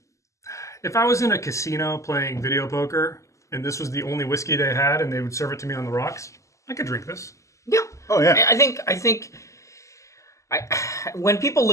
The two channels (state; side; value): late; right; 0.15 ms